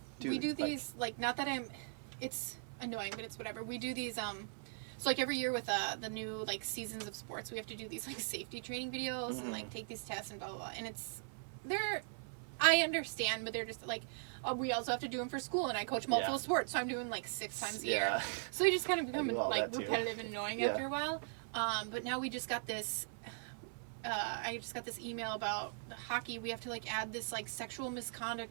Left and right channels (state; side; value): silent; left; 51 dB below the other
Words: dude. We do these, like not that it's annoying, but it's whatever. We do these, so like every year with the new like seasons of sports, we have to do these like safety training videos and like take these tests and blah, blah, blah. And I understand, but they're just like, we also have to do them for school, and I coach multiple sports, so I'm doing like 6 times a year. So they just kind of become like repetitive and annoying after a while. But now we just got this. I just got this email about hockey. We have to like add this like sexual